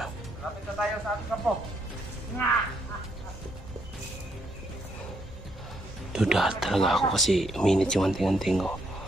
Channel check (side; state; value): both; normal; correlation 0.74